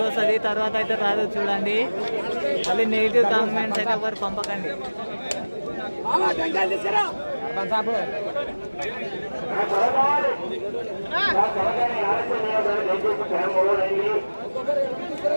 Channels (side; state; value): both; inverted; correlation -1.00